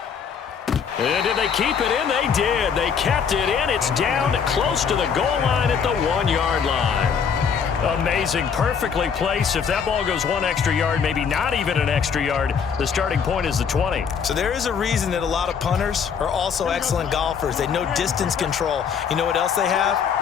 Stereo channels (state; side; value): quieter; right; 6.8 dB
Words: And did they keep it in? They did. They kept it in. It's down close to the goal line at the 1-yard line. Amazing. Perfectly placed. If that ball goes 1 extra yard, maybe not even an extra yard, the starting point is the 20. So there is a reason that a lot of punters are also excellent golfers. They know distance control. You know what else they have?